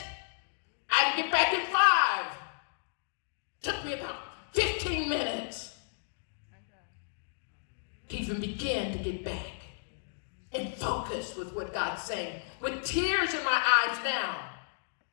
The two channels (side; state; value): right; silent; digital silence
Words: I didn't get back in 5. Took me about 15 minutes to even begin to get back and focus with what God's saying. With tears in my eyes now.